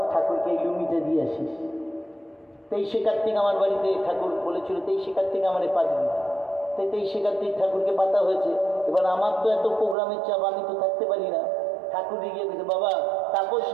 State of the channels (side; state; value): left; drops out; at 10.0 s